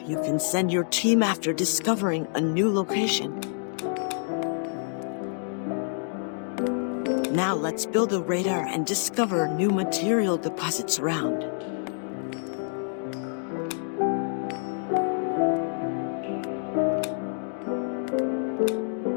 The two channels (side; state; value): right; silent; digital silence